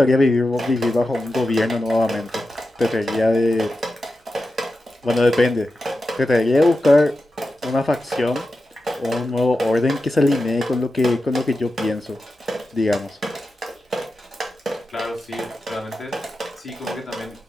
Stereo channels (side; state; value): both; normal; correlation 0.91